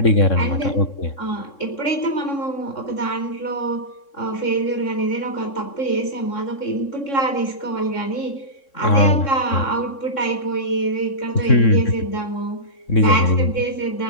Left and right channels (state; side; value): late; right; 3.6 ms